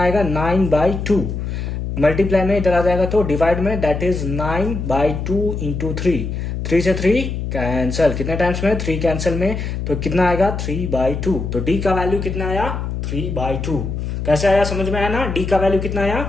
आएगा 9/2, मल्टीप्लाई में इधर आ जाएगा तो डिवाइड में, दैट इज 9/2 इंटू 3 से 3 कैंसल, कितने टाइम्स में 3 कैंसल में, तो कितना आएगा 3/2। तो डी का वैल्यू कितना आया 3/2। कैसे आया, समझ में आया ना, डी का वैल्यू कितना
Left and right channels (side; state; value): left; noise; hum, 4 dB below the sound